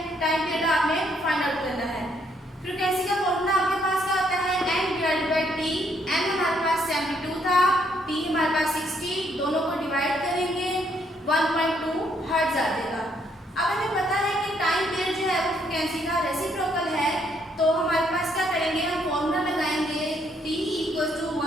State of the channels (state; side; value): normal; both; correlation 0.71